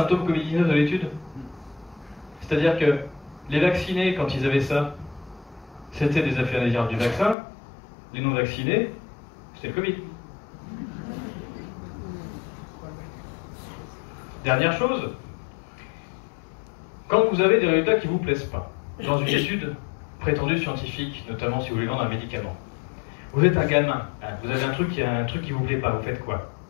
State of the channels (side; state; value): right; drops out; at 7.4 s